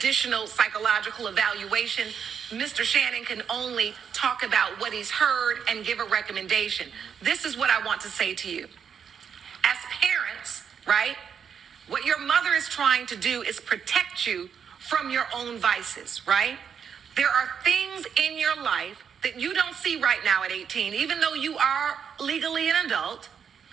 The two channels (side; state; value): left; quieter; 7.3 dB